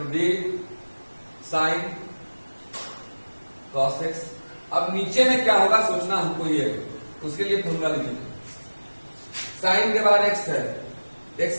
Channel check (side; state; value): both; inverted; correlation -1.00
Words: d sine cos x. अब नीचे में क्या होगा सोचना हमको ये है, उसके लिए फॉर्मूला लिखेंगे। साइन के बाद एक्स है,